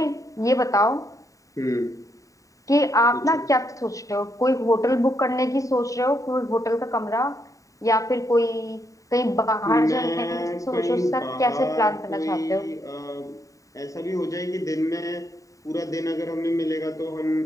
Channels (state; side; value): late; right; 0.16 ms